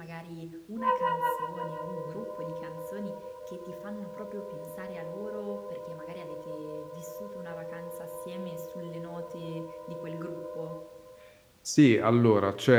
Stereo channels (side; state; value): both; identical; correlation 1.00